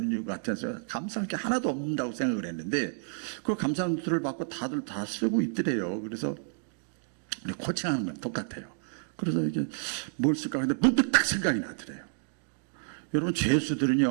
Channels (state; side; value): silent; left; digital silence